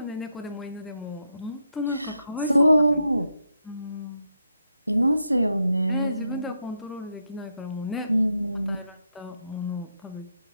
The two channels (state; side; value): inverted; both; correlation -0.81